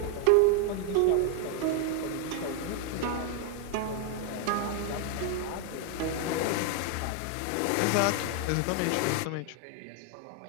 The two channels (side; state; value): both; different; correlation 0.00